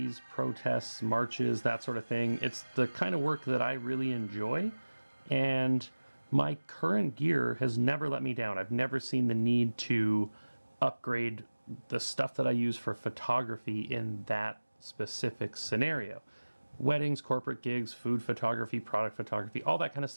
protests, marches, that sort of thing. It's the kind of work that I really enjoy, and my current gear has never let me down. I've never seen the need to upgrade the stuff that I use for photography in that specific scenario. Weddings, corporate gigs, food photography, product photography, all that kind of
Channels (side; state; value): both; inverted; correlation -1.00